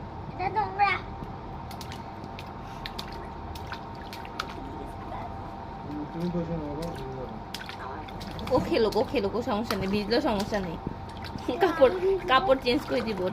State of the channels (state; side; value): identical; both; correlation 1.00